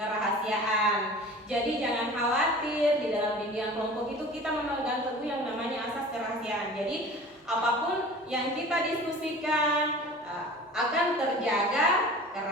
Jadi jangan khawatir, di dalam bimbingan kelompok itu kita memegang teguh yang namanya asas kerahasiaan. Jadi apapun yang kita diskusikan akan terjaga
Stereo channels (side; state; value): both; normal; correlation 0.41